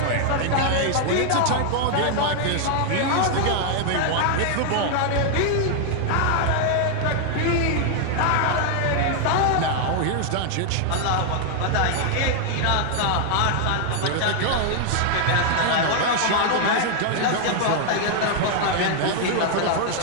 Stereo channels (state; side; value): different; both; correlation 0.00